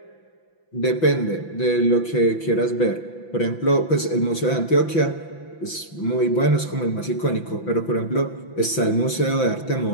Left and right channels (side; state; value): right; late; 5.9 ms